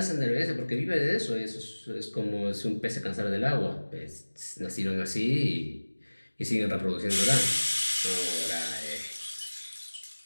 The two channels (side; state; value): both; inverted; correlation -1.00